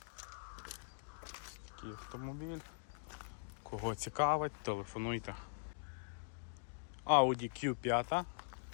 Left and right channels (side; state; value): right; silent; digital silence